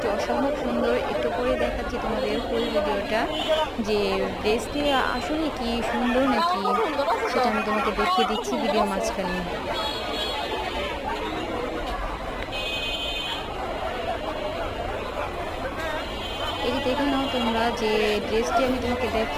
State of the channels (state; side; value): identical; both; correlation 1.00